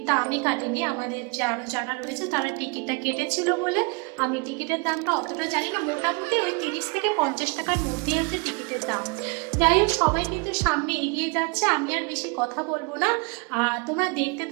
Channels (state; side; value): quieter; left; 31.7 dB